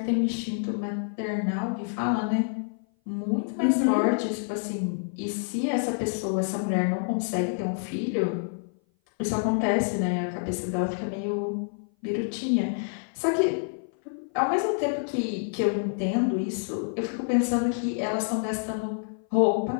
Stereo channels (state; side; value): silent; right; 57 dB below the other